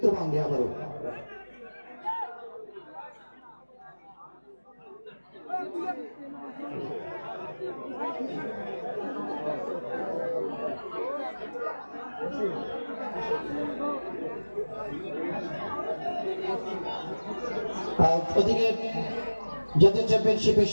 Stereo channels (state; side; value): inverted; both; correlation -1.00